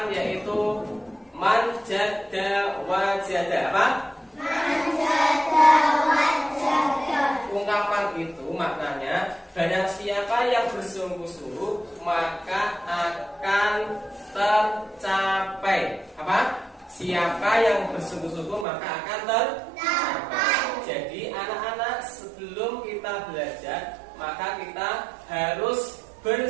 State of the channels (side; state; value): left; drops out; at 18.7 s